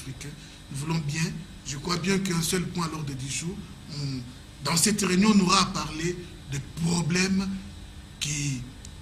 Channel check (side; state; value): both; identical; correlation 1.00